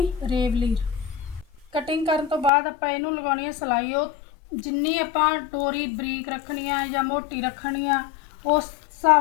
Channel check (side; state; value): right; drops out; at 2.5 s